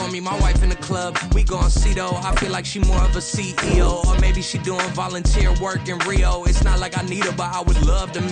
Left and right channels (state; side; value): identical; both; correlation 1.00